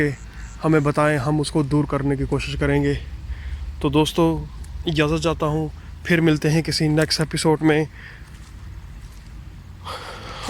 हमें बताएं, हम उसको दूर करने की कोशिश करेंगे। तो दोस्तों इजाज़त चाहता हूँ, फिर मिलते हैं किसी नेक्स्ट एपिसोड में।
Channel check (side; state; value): both; identical; correlation 1.00